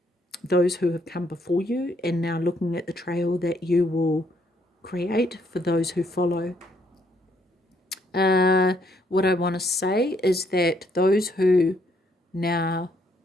those who have come before you, and now looking at the trail that you will create for those who follow. What I want to say is that those who now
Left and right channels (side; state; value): both; normal; correlation 0.70